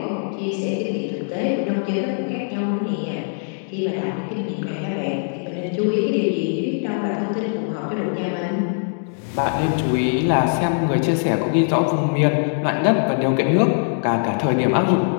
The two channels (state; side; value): silent; right; digital silence